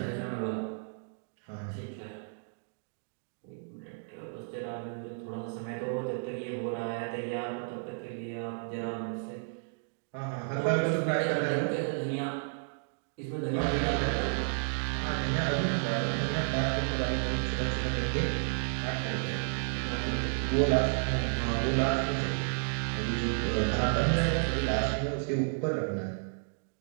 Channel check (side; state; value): left; silent; digital silence